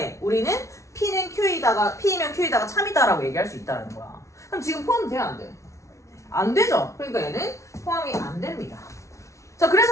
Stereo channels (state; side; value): late; right; 0.14 ms